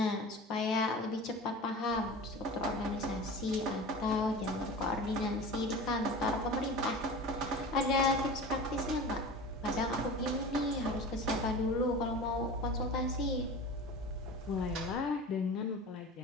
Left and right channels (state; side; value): normal; both; correlation 0.34